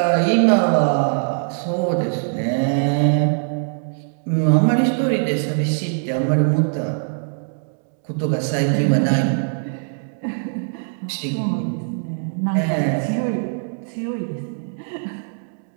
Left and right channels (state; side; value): silent; left; digital silence